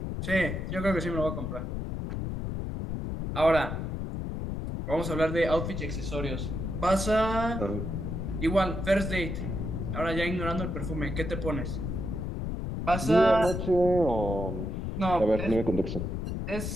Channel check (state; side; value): noise; left; rumble, 4 dB below the sound